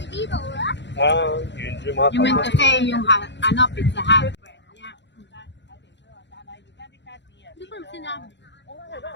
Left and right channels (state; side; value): late; right; 0.52 ms